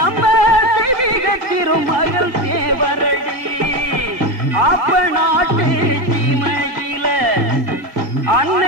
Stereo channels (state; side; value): late; left; 1.8 ms